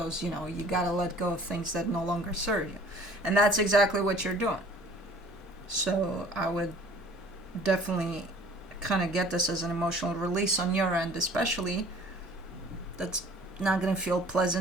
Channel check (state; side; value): normal; both; correlation 0.50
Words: you know, you gotta let go of things that no longer serve you. And that's exactly what you're doing. So I would definitely kind of get this as an emotional release on your end, especially. That's not going to feel